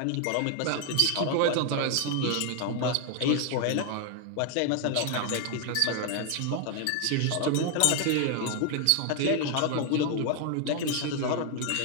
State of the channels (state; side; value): different; both; correlation 0.00